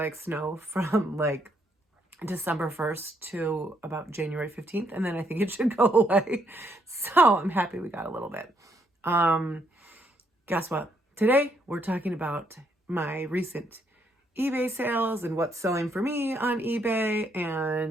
snow from like December 1st to about January 15th and then I think it should go away. So I'm happy we got a little bit. Guess what? Today we're talking about my recent eBay sales and what's selling for me on eBay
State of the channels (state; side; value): normal; both; correlation 0.73